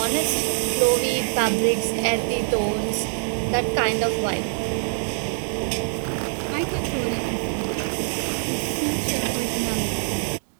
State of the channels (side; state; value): left; silent; 62 dB below the other